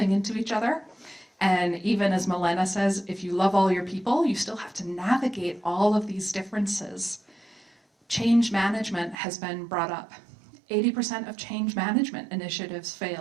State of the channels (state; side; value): drops out; left; at 9.2 s